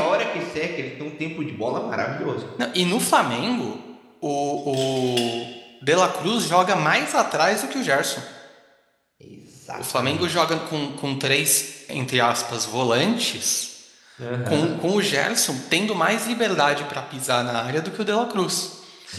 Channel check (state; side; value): identical; both; correlation 1.00